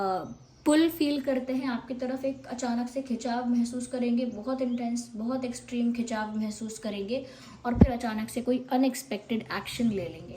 पुल फील करते हैं आपकी तरफ, एक अचानक से खिंचाव महसूस करेंगे, बहुत इंटेंस, बहुत एक्सट्रीम खिंचाव महसूस करेंगे, और फिर अचानक से कोई अनएक्सपेक्टेड एक्शन ले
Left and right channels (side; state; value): both; identical; correlation 1.00